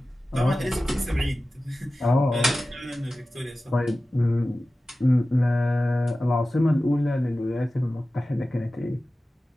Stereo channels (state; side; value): normal; both; correlation 0.96